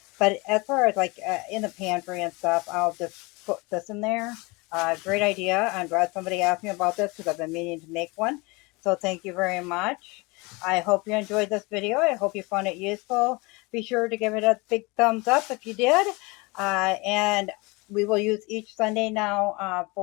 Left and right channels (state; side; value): quieter; right; 26.1 dB